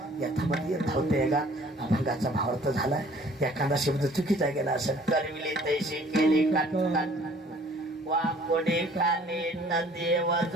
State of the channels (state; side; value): normal; both; correlation 0.54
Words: यथामध्ये धावते का अभंगाचा भावार्थ झालाय एखादा शब्द चुकीचा गेला असं करविले तैसे केले का वाकोडे काने न देव